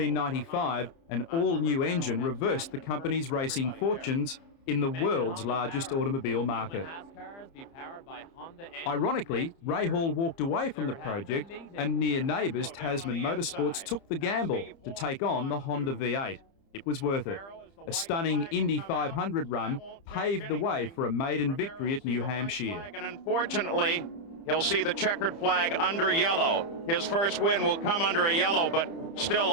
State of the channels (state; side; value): late; right; 30 ms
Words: an all-new engine reversed the company's racing fortunes in the world's largest automobile market. Ironically, Rahal walked away from the project, and near neighbours Tasman Motorsports took the gamble to take on the Honda V8. It was worth it. A stunning Indy 500 run paved the way for a maiden victory at New Hampshire. And unfortunately, he'll see the checkered flag under yellow. His first win will come under a yellow, but still